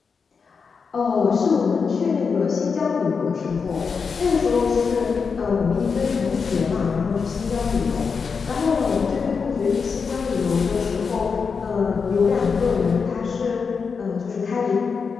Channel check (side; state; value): right; quieter; 5.5 dB